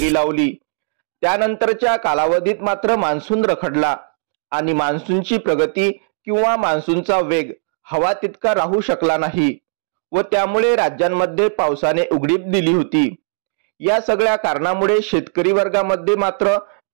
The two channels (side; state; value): left; silent; digital silence